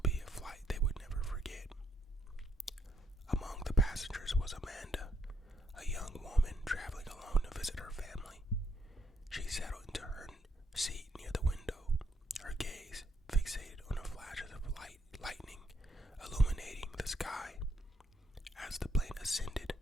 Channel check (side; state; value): both; normal; correlation 0.73